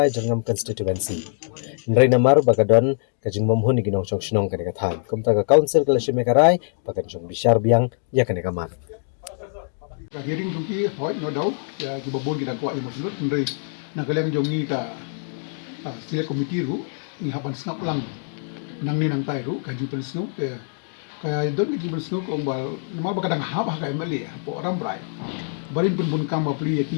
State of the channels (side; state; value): right; silent; 63 dB below the other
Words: Jringam constituency. Nrai namar bagadon kajing momhun ki nong chong shnong kani ka tham. Kumta ka council kala shimekarai bakan chong bishar biang ya kani ka man. Ka hearing jungki hoi no dau ya ki babon kita ko imo sunut ndai na kalian jongi ka select committee ru ni hapan snap lang nang ni nang tai ru ka jupen snow kaya don ki jupen snow ko bal normal bakadang hab ha ka MLA po Ramrai barin pun kam bapli